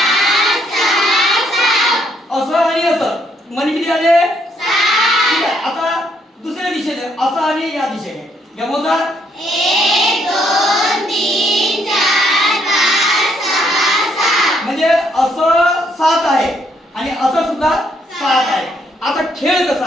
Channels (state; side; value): normal; both; correlation 0.71